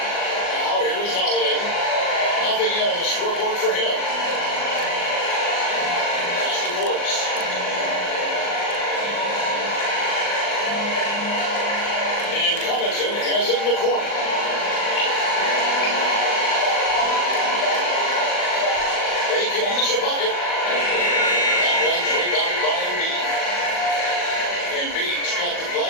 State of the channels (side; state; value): right; late; 39 ms